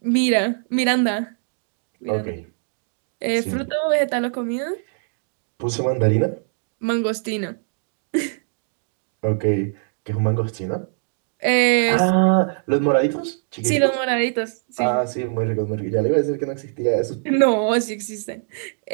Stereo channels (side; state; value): left; silent; digital silence